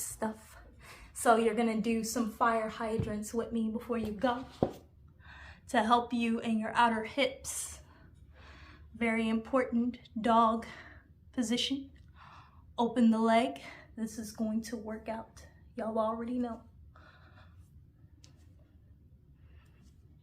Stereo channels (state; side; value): identical; both; correlation 1.00